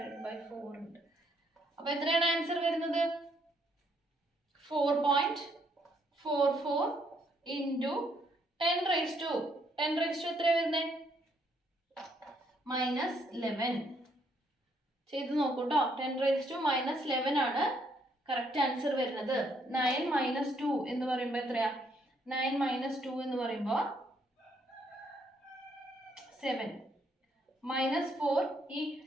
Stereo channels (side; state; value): both; normal; correlation 0.71